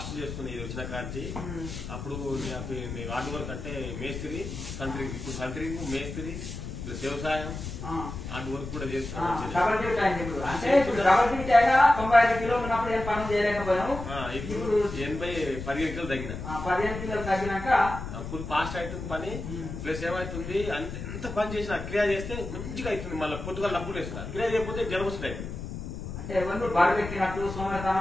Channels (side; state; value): left; noise; rumble, 8 dB below the sound